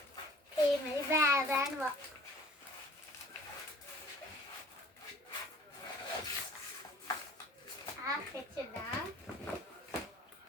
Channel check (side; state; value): both; normal; correlation 0.49